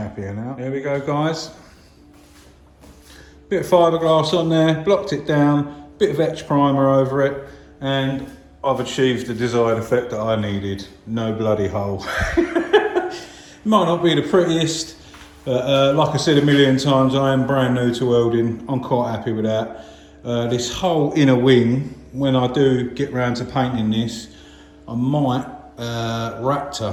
now. There we go, guys. Bit of fiberglass on there, blocked it down, bit of etch primer over it, and I've achieved the desired effect that I needed. No bloody hole. Might not be the prettiest, but like I said a million times, I am brand new to welding. I'm quite happy with that. This whole inner wing, when I do get round to painting this, I might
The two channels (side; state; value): both; identical; correlation 1.00